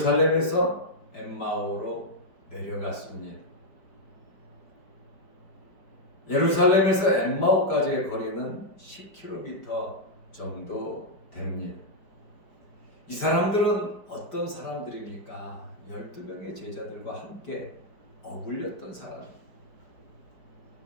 엠마오로 내려갔습니다. 예루살렘에서 엠마오까지의 거리는 10km 정도 됩니다. 이 사람들은 어떤 사람들입니까? 12명의 제자들과 함께 어울렸던 사람.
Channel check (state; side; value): late; right; 5.1 ms